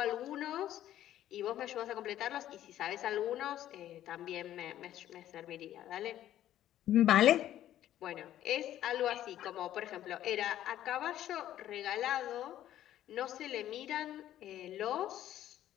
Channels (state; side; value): quieter; right; 12.4 dB